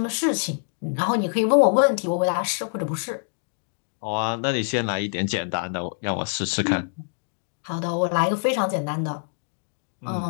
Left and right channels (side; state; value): right; silent; digital silence